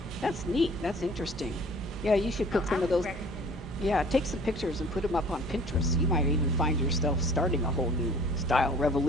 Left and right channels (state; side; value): normal; both; correlation 0.50